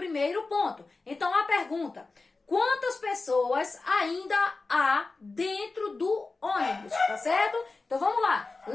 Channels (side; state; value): right; quieter; 3.7 dB